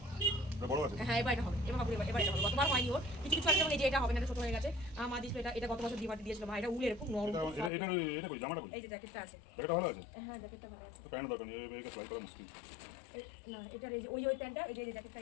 হ্যাঁ এবার এটা হবে, এবার বাবু এবার এটা হবে, গতবার হয়নি ওর, কিছু কিছু আছে যেমন এই যে এটা হবে না, ছোট হয়ে গেছে। মা দিয়েছিল এটা গত বছর দিয়ে দিয়েছিল মা, এটা উলের খুব নরম। এই যে জ্যাকেটটা আছে, হ্যাঁ জ্যাকেটটা ভালো আছে, না এটার এই যে ওই প্যান্টটা, এই যে জ্যাকেটটা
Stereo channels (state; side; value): drops out; right; at 7.7 s